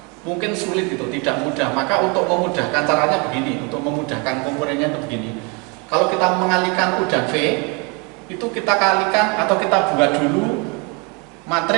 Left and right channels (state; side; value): quieter; left; 30.4 dB